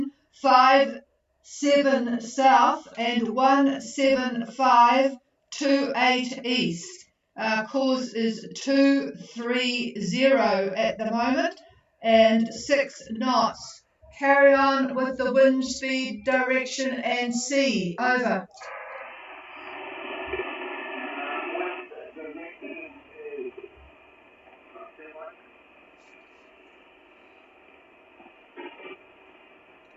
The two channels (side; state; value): both; identical; correlation 1.00